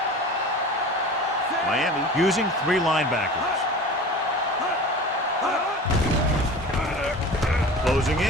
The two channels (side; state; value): both; normal; correlation 0.37